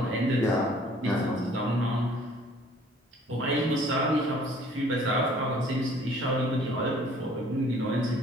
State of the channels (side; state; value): both; normal; correlation 0.55